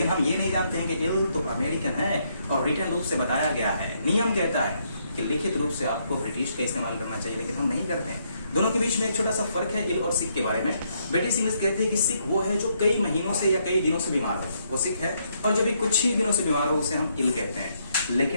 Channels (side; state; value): both; inverted; correlation -0.74